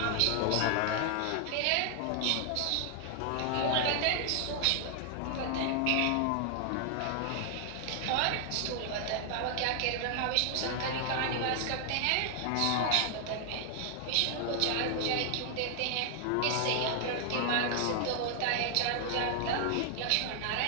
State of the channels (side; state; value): both; different; correlation 0.00